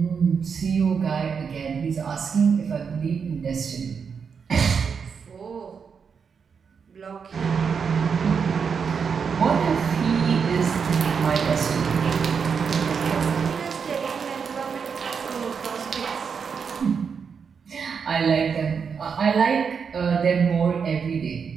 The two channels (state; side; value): quieter; left; 6.2 dB